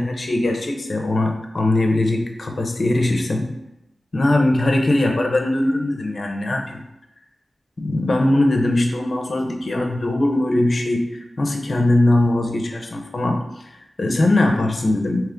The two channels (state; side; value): normal; both; correlation 0.95